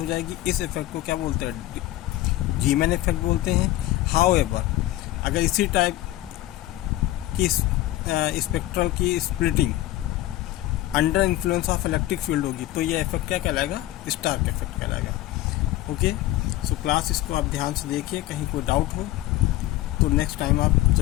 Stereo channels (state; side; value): quieter; right; 15.7 dB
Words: जाएगी। इस इफेक्ट को क्या बोलते हैं, जीमन इफेक्ट बोलते हैं। हाउएवर अगर इसी टाइप की स्पेक्ट्रल की splitting under influence of electric field होगी तो ये इफेक्ट क्या कहलाएगा, स्टार्क इफेक्ट कहलाएगा। ओके, सो क्लास इसको आप ध्यान से देखिए, कहीं कोई डाउट हो तो नेक्स्ट टाइम आप